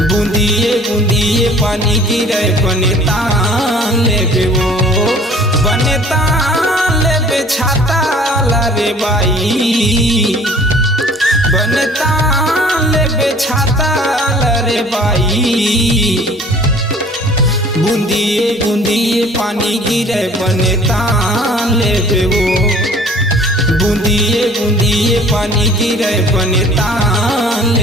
बूंदिए बूंदिए पानी गिरे बनता लेबे वो बनता लेबे छाता रे बाई बनता लेबे छाता रे बाई बूंदिए बूंदिए पानी गिरे बनता लेबे वो बूंदिए बूंदिए पानी गिरे बनता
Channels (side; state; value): both; normal; correlation 0.51